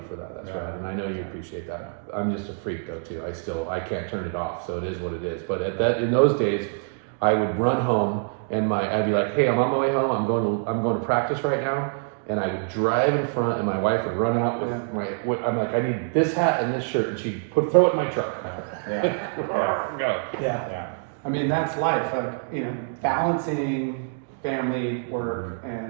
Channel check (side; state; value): left; silent; 61 dB below the other